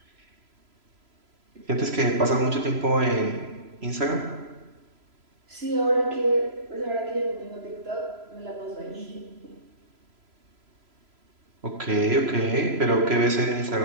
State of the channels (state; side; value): late; left; 3.0 ms